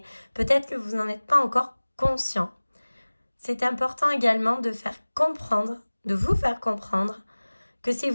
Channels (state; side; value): inverted; both; correlation -1.00